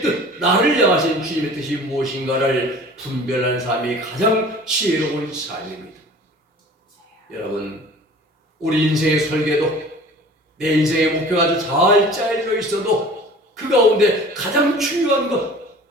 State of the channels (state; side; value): normal; both; correlation 0.44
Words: 나를 향하신 주님의 뜻이 무엇인가를 분별하는 삶이 가장 지혜로운 삶입니다. 여러분, 우리 인생의 설계도 내 인생의 목표가 아주 잘 짜여져 있어도 그 가운데 가장 중요한